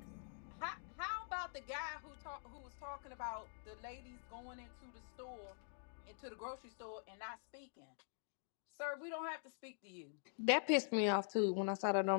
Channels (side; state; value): right; silent; digital silence